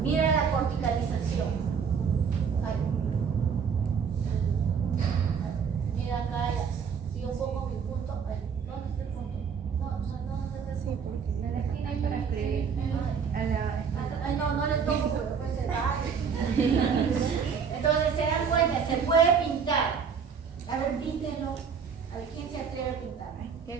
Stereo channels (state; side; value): quieter; left; 6.5 dB